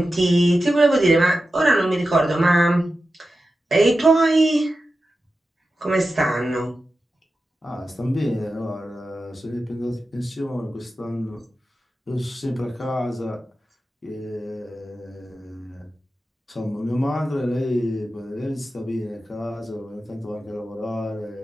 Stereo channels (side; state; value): both; normal; correlation 0.92